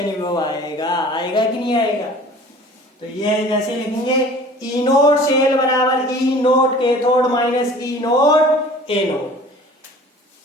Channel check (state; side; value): normal; both; correlation 0.46